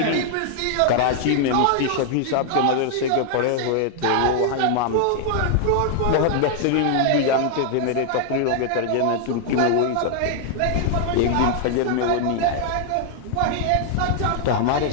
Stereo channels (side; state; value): both; different; correlation 0.00